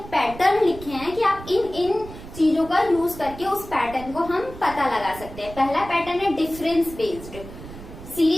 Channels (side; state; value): right; noise; rumble, 14 dB below the sound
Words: पैटर्न लिखे हैं कि आप इन चीजों का यूज करके उस पैटर्न को हम पता लगा सकते हैं। पहला पैटर्न है डिफरेंस बेस्ड।